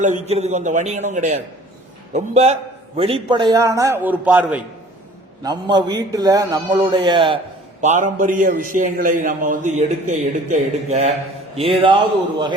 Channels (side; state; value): both; normal; correlation 0.50